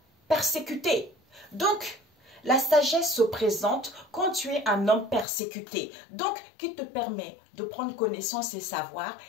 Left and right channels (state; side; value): drops out; right; at 5.2 s